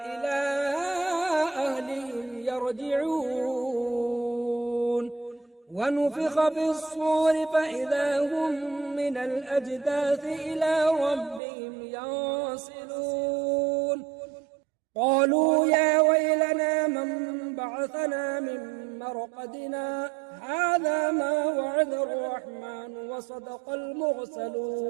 إلى أهلهم يرجعون ونفخ في الصور فإذا هم من الأجداث إلى ربهم ينسلون قالوا يا ويلنا من بعثنا من مرقدنا هذا ما وعد الرحمن وصدق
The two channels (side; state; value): left; drops out; at 11.4 s